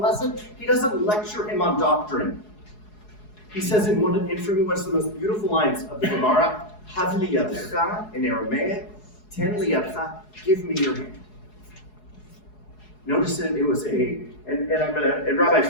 lesson? He doesn't lecture him on doctrine. He says in for me, what's the most beautiful lines of the Gemara, Hav li yadcha, in Aramaic, ten li yadcha, give me your hand. Notice that it was and Rabbi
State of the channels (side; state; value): right; late; 4.7 ms